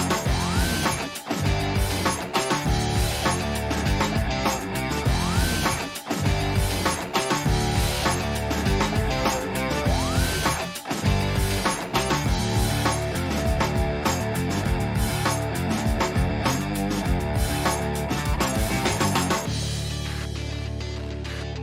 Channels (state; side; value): identical; both; correlation 1.00